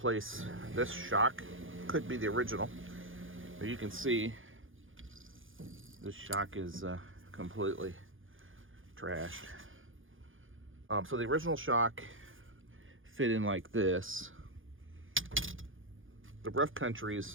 this shock. Could be the original, but you can see this shock is completely trashed. So the original shock fit in like this. The Rough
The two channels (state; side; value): late; left; 0.58 ms